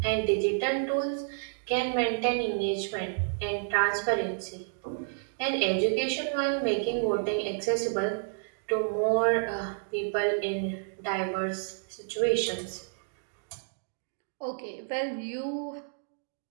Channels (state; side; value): silent; left; digital silence